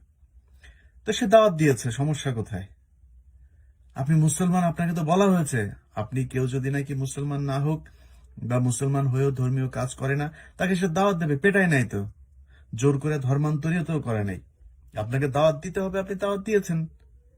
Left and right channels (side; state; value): both; identical; correlation 1.00